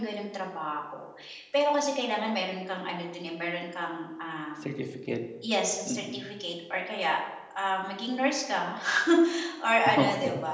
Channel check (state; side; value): identical; both; correlation 1.00